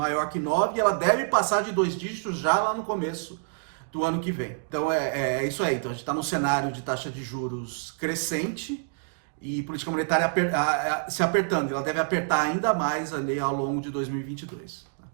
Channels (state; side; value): silent; left; 60 dB below the other